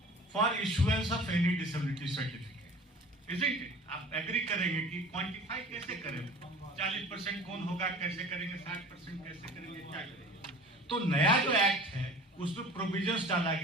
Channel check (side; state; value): both; normal; correlation 0.43